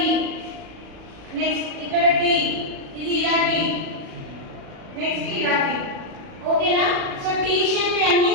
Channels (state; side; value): late; left; 37 ms